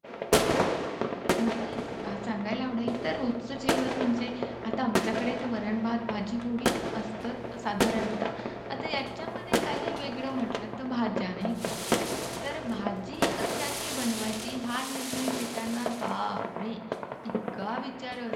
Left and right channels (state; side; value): identical; both; correlation 1.00